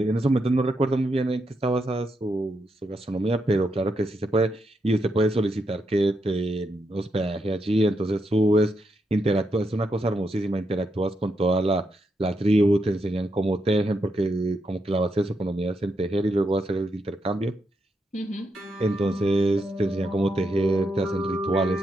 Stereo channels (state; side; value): normal; both; correlation 0.82